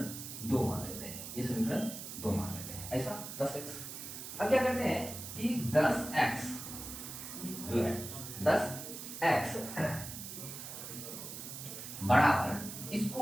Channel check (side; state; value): right; noise; hiss, 9 dB below the sound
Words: 2 मान लेते हैं, ये समीकरण 2 मान लेते हैं, ऐसा 10x। अब क्या करते हैं कि 10x जो है 10x बराबर